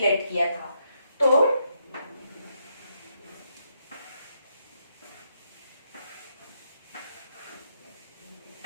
late किया था. तो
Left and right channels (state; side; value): inverted; both; correlation -0.78